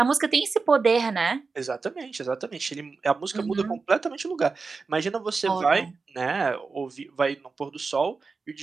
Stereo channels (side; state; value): left; quieter; 4.4 dB